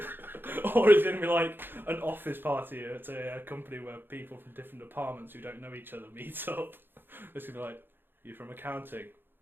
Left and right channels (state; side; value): late; left; 0.099 ms